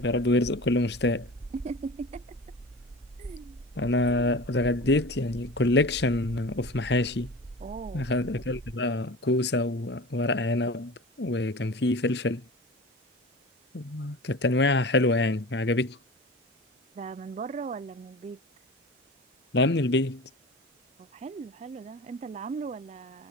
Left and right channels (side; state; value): both; normal; correlation 0.34